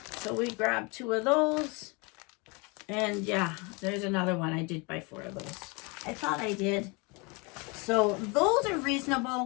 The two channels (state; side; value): quieter; right; 29.4 dB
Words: So we grabbed 2 of those. And yeah, there's another one. I did buy 4 of those. I thought I did. So those are